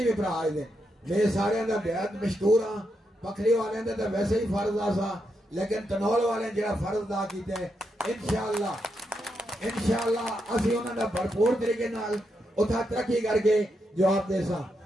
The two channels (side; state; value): both; normal; correlation 0.83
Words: भी भरा आए देन मैं सारे दा बेहद मशहूर हाँ। पखरी वाले दा तो वैसे ही फर्ज आसा लेकिन तनावल वाले जेड़ा फर्ज अदा कीते इंशाअल्लाह असीं उन्हां दा भरपूर तरीके नाल उथा तरक्की करके जवाब देसा